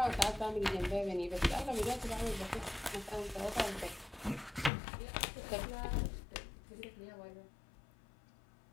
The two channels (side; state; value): right; drops out; at 4.7 s